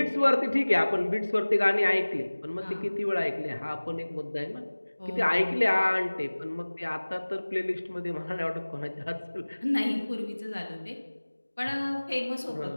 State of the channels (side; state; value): both; inverted; correlation -1.00